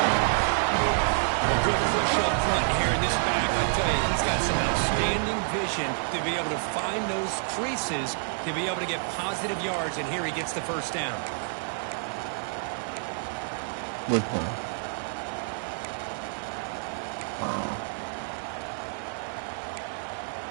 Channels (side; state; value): left; silent; digital silence